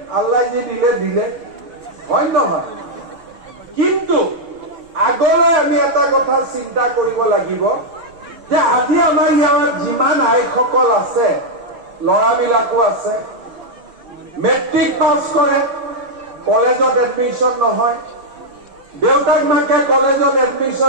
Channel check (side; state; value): left; late; 6.7 ms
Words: আল্লাহ যি দিলে দিলে, হয় নহয়? কিন্তু আগলৈ আমি এটা কথা চিন্তা কৰিব লাগিব যে আজি আমাৰ ইয়াত যিমান আইসকল আছে, ল'ৰাবিলাকো আছে, মেট্ৰিক পাছ কৰে, কলেজত এডমিশ্যন নহয়, দেউতাক মাকে কলেজত